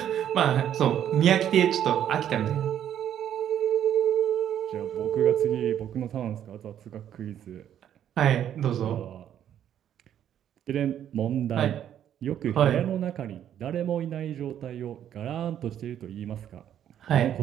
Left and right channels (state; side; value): quieter; left; 10.2 dB